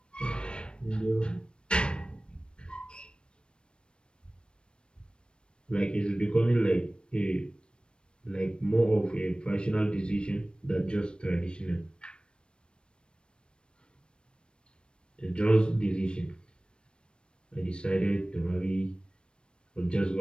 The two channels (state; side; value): late; right; 0.055 ms